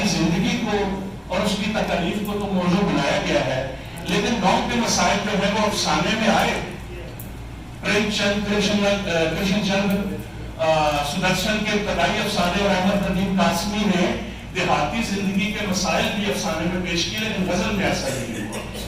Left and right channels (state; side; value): identical; both; correlation 1.00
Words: زندگی کو اور اس کی تکالیف کو تو موضوع بنایا گیا ہے, لیکن گاؤں کے مسائل جو ہے وہ افسانے میں آئے. پریم چند, کرشن چند سدرشن کے ابتدائی افسانے اور احمد ندیم قاسمی نے دیہاتی زندگی کے مسائل بھی افسانے میں پیش کیے, لیکن غزل میں ایسا نہیں ہوا.